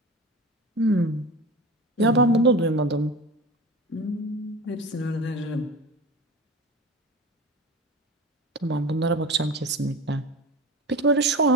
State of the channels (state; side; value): normal; both; correlation 0.31